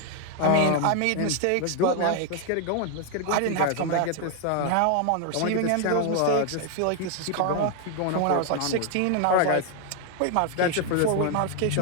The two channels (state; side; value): different; both; correlation 0.00